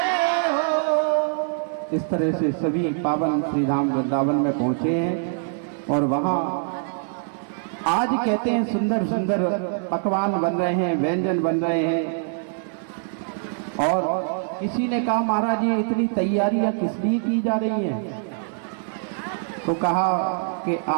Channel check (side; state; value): left; silent; 58 dB below the other